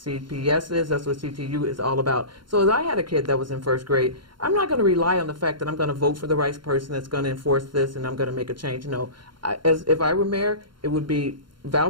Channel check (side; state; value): left; late; 0.72 ms